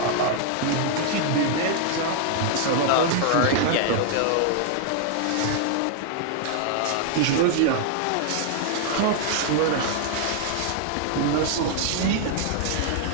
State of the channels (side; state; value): both; different; correlation 0.00